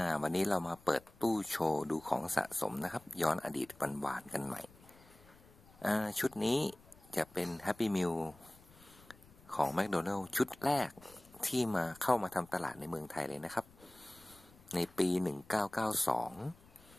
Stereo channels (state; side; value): noise; left; rumble, 25 dB below the sound